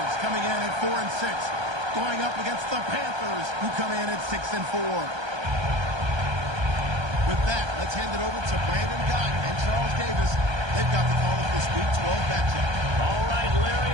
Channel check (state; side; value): late; left; 1.3 ms